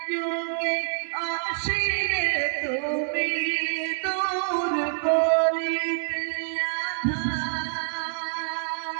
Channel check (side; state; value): left; silent; digital silence